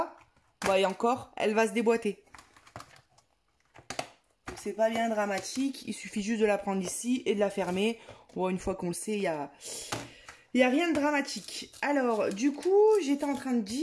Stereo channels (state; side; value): identical; both; correlation 1.00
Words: bah, et encore, elle va se déboîter. C'est pas bien dramatique, il suffit juste de la prendre ici et de la fermer. Bon, une fois qu'on le sait, il y a rien de dramatique. Alors, du coup, j'étais en train de